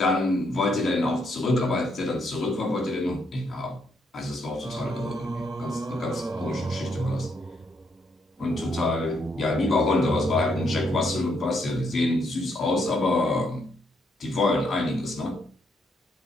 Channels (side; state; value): both; normal; correlation 0.75